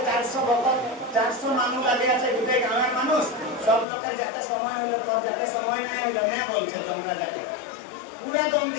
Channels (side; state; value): right; drops out; at 3.9 s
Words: 400 ভক্ত 400 মানুষ লাগে আছে গোটে গাঁয়ের মানুষ সব লোকের যাতে সময় হলো তোর যাতে সময় নাই হলো না বলছে তোমরা যাতে पूरा दम